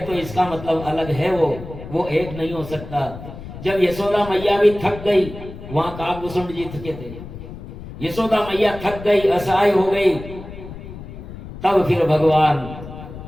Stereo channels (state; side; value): noise; left; rumble, 13 dB below the sound